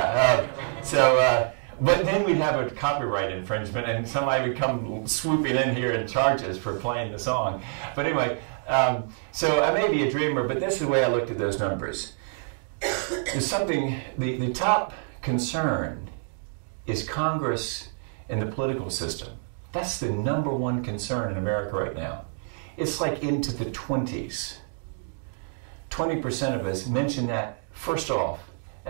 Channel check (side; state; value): left; silent; 60 dB below the other